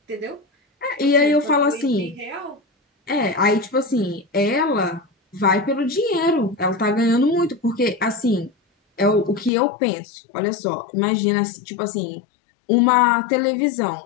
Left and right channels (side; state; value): right; drops out; at 9.5 s